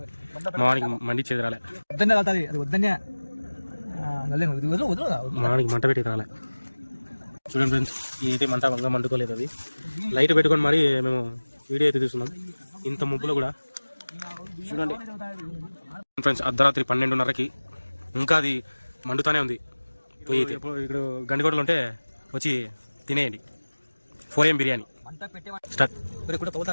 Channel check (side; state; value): both; inverted; correlation -1.00